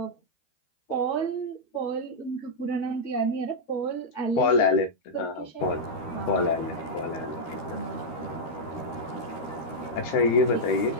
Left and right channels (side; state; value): right; late; 13 ms